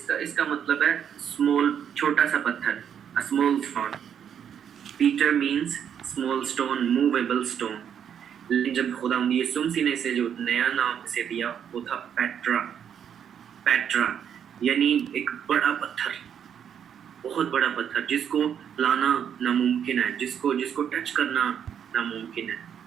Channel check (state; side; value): quieter; left; 8.5 dB